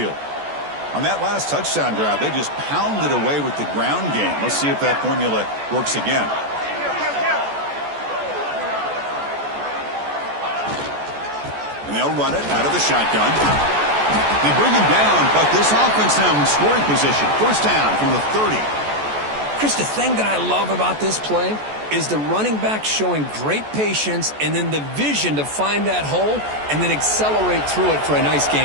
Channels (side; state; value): left; late; 14 ms